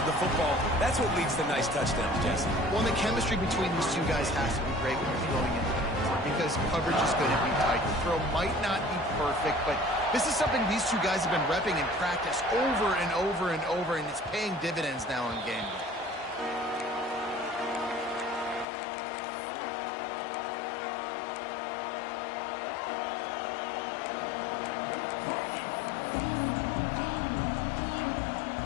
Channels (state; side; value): drops out; right; at 18.7 s